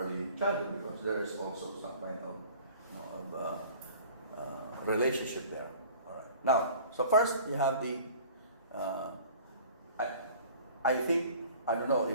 childhood, because there is also some kind of relationship there. All right. Now, so first you have the. I think I don't know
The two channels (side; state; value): both; inverted; correlation -0.47